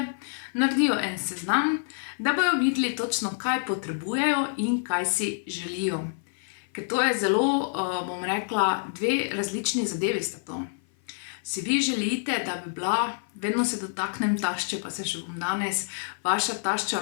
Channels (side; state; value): right; silent; 55 dB below the other